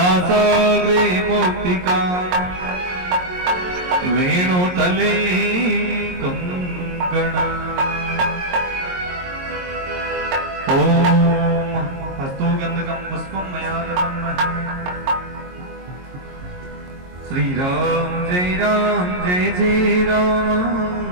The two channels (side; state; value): left; late; 22 ms